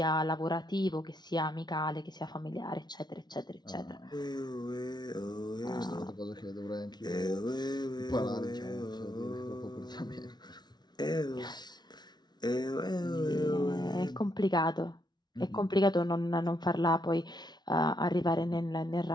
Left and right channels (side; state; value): right; late; 0.20 ms